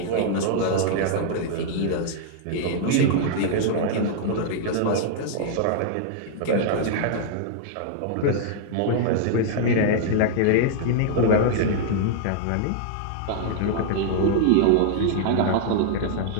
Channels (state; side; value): different; both; correlation -0.01